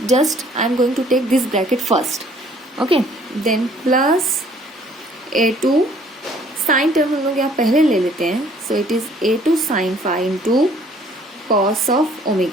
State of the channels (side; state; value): both; normal; correlation 0.58